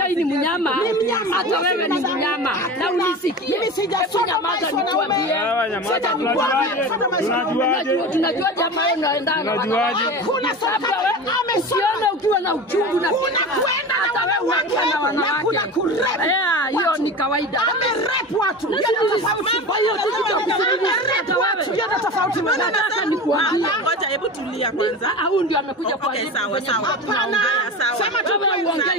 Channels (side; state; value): both; normal; correlation 0.30